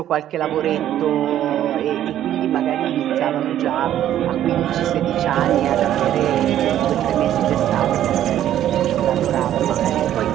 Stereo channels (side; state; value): left; quieter; 11.7 dB